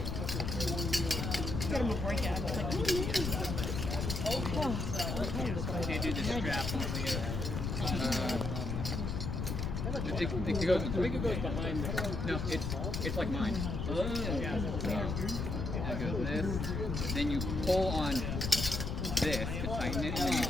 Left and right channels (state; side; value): noise; left; rumble, 2 dB below the sound